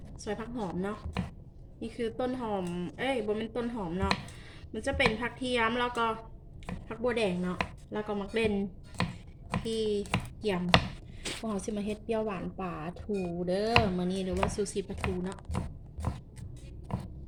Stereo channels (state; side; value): identical; both; correlation 1.00